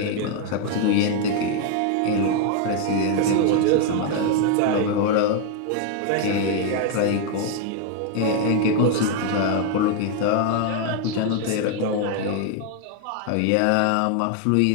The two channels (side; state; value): both; different; correlation 0.00